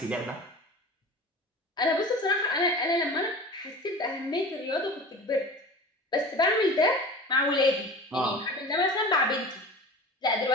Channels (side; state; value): both; normal; correlation 0.36